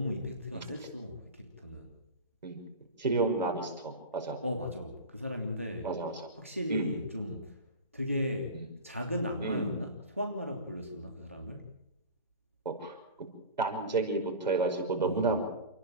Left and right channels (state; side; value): inverted; both; correlation -0.31